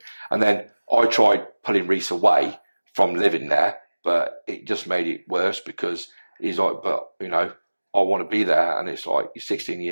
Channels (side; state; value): both; inverted; correlation -1.00